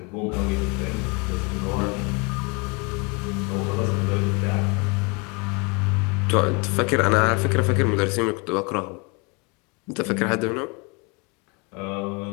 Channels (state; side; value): quieter; right; 30.6 dB